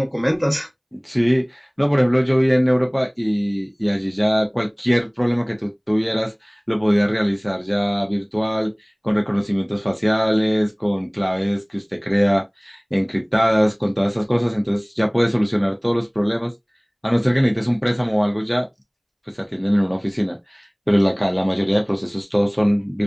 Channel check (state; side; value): identical; both; correlation 1.00